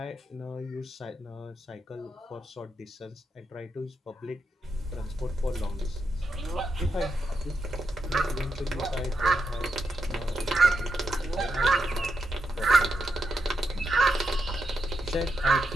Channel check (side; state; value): both; normal; correlation 0.84